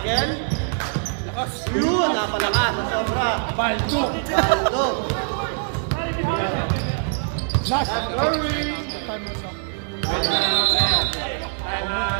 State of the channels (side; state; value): left; silent; digital silence